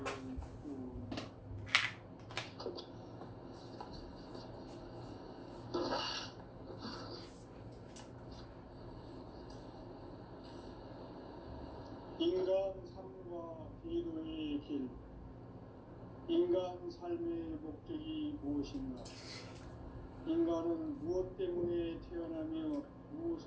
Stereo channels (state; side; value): identical; both; correlation 1.00